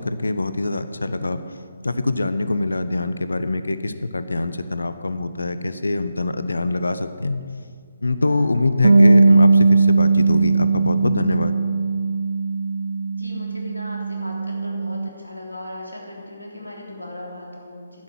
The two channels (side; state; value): both; inverted; correlation -0.90